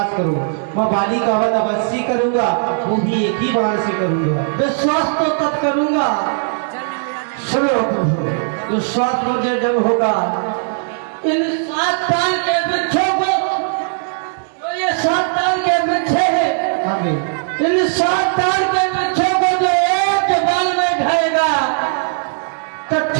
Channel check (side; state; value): left; silent; digital silence